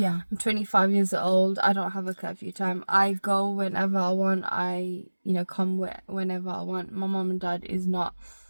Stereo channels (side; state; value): both; inverted; correlation -1.00